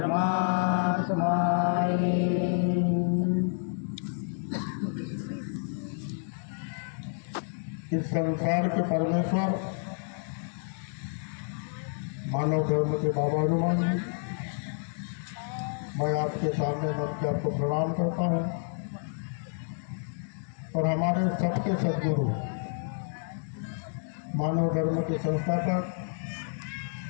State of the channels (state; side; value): silent; right; digital silence